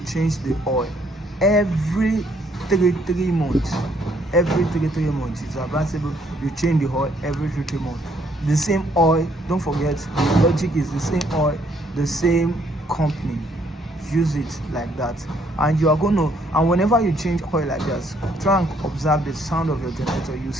change the oil every 3 months. Every 3 months, it's advisable you change the oil every 3 months. The same oil, don't forget, the logic is the same oil, the same company. Use it like that, and you are going to, and whenever you change oil like this, try and observe the sound of your generator. You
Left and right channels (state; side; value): normal; both; correlation 0.67